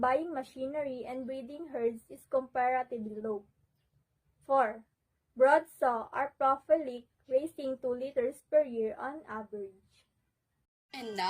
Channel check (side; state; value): both; identical; correlation 1.00